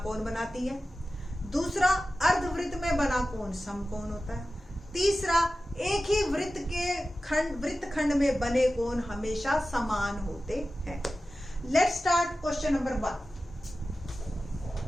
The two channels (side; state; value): both; normal; correlation 0.95